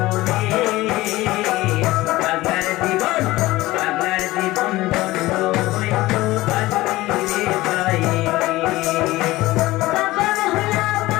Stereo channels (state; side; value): quieter; right; 18.5 dB